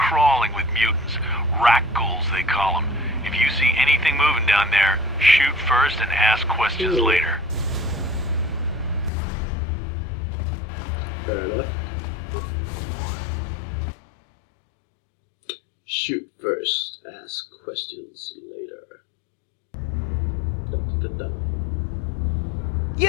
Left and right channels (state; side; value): drops out; right; at 9.1 s